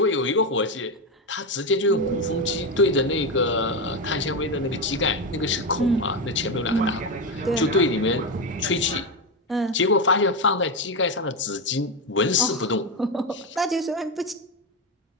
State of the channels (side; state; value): both; normal; correlation 0.12